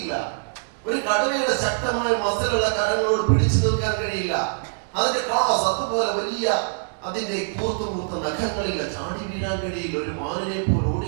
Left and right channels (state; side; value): silent; left; digital silence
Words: ഒരു കടുവയുടെ ശക്തമായ മസിലുള്ള കരങ്ങളോട് പിടിച്ചു നിൽക്കാൻ കഴിയില്ല. അതിന്റെ ക്ലാസ് അതുപോലെ വലിയ അതിന്റെ കൂർത്ത നഖങ്ങളില്ല, ചാടി വീഴാൻ കഴിയില്ല, ഒരു മാനിനെ പോലെ ഓടി